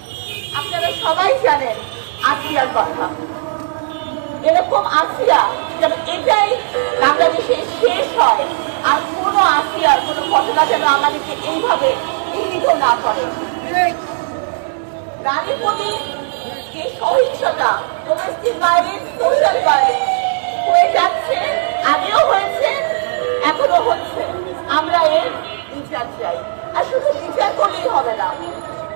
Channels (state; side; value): silent; left; digital silence